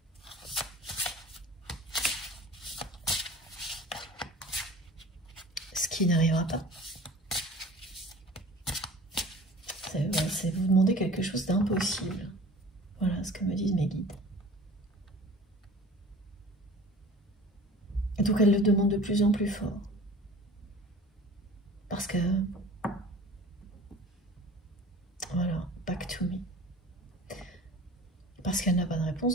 Ce qui n'arrivera pas. C'est vous demander quelque chose d'impossible. Voilà ce que me disent mes guides. Et donc elle le demande de plus en plus fort. Parce que, voilà, back to me. Parce qu'elle n'a pas de réponse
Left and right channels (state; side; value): normal; both; correlation 0.43